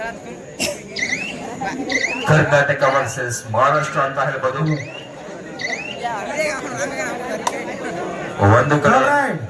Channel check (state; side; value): identical; both; correlation 1.00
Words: ಕರ್ನಾಟಕ ವರ್ಸಸ್ ಮಹಾರಾಷ್ಟ್ರ ಅಂತ ಹೇಳ್ಬೋದು. ಒಂದು ಕಡೆ